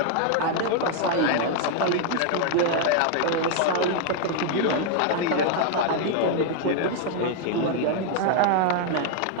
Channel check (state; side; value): different; both; correlation 0.00